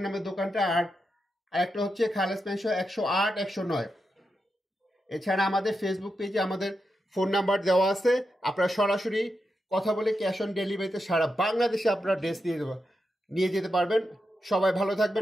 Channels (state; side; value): normal; both; correlation 0.87